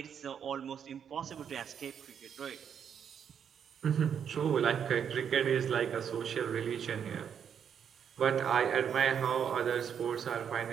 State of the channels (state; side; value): quieter; left; 8.0 dB